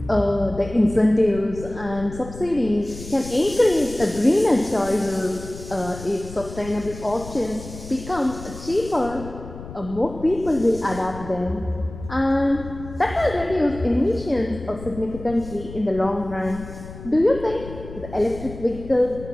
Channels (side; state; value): left; noise; rumble, 13 dB below the sound